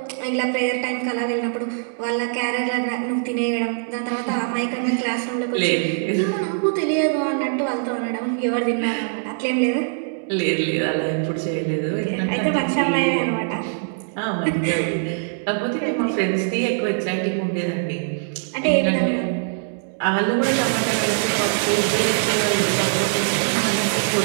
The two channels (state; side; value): silent; left; digital silence